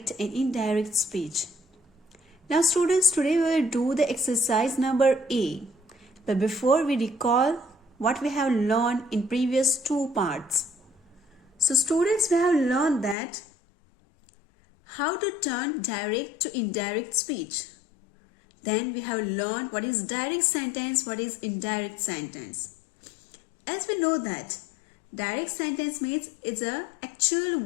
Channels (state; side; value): drops out; right; at 13.2 s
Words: and indirect speech. Now students, today we will do the exercise number A. But before we recall what we have learned in previous two parts. So students, we have learned that how to turn direct to indirect speech. Then we have learned what is direct sentence, what is indirect sentence. As we know that direct sentence means it's the actual